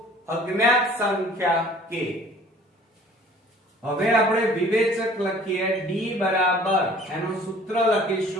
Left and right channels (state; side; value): normal; both; correlation 0.51